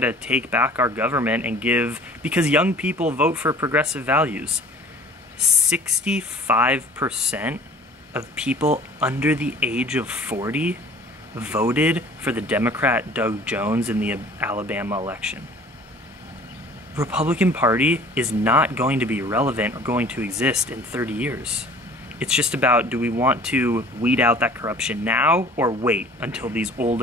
take back our government and give, because young people vote for progressive values. 65% of people under the age of 40 voted for the Democrat Doug Jones in the Alabama election. The Republican Party is not going to be relevant or going to exist in 30 years. It's just about, do we want to weed out that corruption now or wait until these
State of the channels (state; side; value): normal; both; correlation 0.49